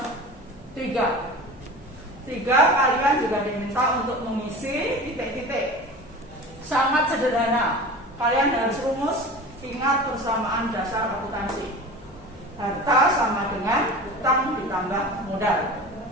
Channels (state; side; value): normal; both; correlation 0.35